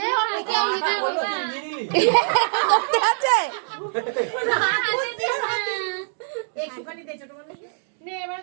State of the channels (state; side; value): silent; left; 63 dB below the other